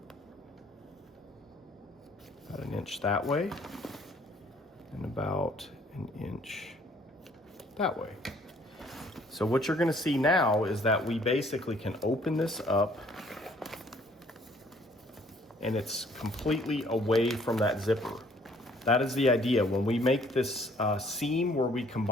about an inch that way and about an inch that way. So what you're going to see now is that we basically can open this up and it's completely away from that zipper. That is the idea. When we make this seam where we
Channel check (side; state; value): both; normal; correlation 0.60